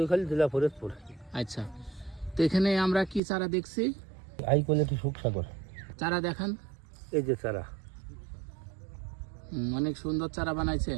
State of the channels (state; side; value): drops out; left; at 3.2 s